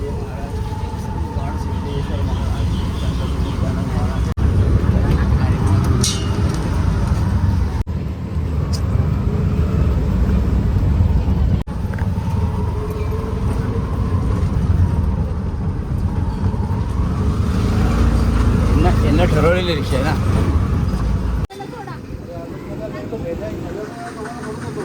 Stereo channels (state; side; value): identical; both; correlation 1.00